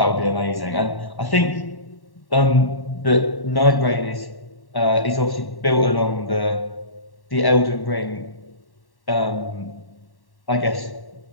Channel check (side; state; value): right; late; 1.1 ms